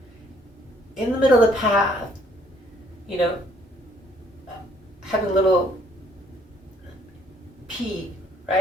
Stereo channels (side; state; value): both; normal; correlation 0.64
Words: in the middle of the path, having a little pee,